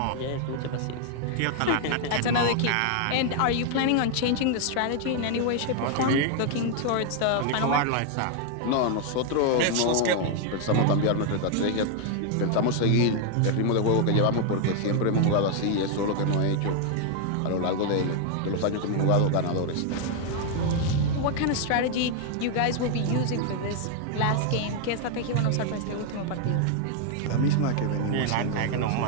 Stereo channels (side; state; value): both; different; correlation 0.00